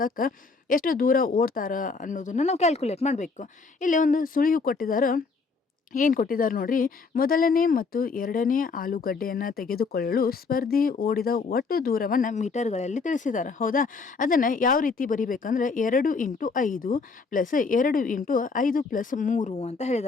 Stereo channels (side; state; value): right; quieter; 4.5 dB